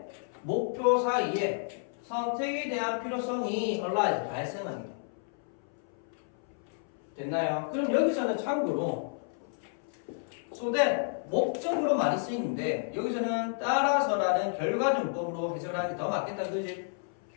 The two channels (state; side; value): silent; right; 57 dB below the other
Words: 목표 사이에 선택에 대한 필요성이 arise, 발생하게 돼. 됐나요? 그럼 여기서는 참고로 so that 목적으로 많이 쓰이는데 여기서는 따라서라는 결과정법으로 해석하는 게 더 맞겠다, 그지?